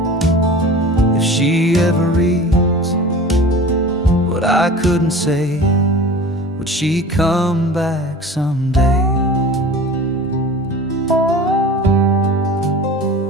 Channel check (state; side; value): normal; both; correlation 0.38